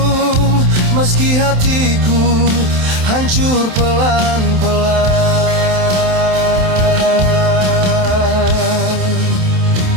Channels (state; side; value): late; left; 27 ms